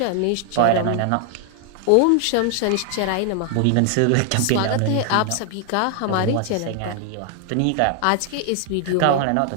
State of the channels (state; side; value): different; both; correlation 0.00